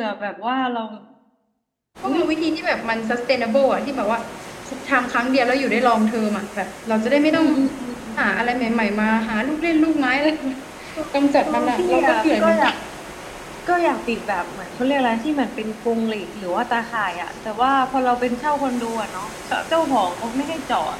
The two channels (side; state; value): both; identical; correlation 1.00